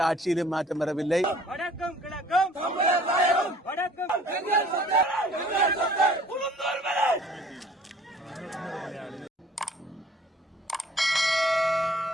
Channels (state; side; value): normal; both; correlation 0.53